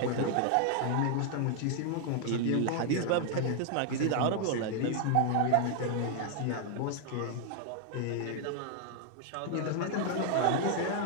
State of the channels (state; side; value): different; both; correlation 0.00